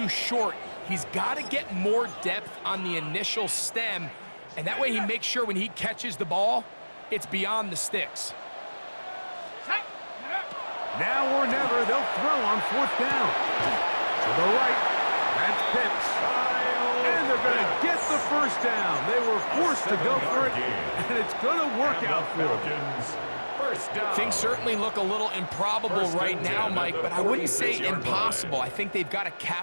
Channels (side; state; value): both; inverted; correlation -1.00